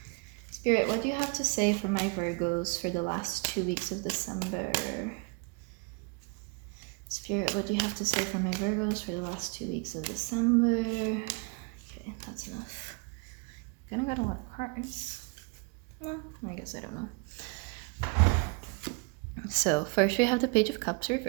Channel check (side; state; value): left; quieter; 32.3 dB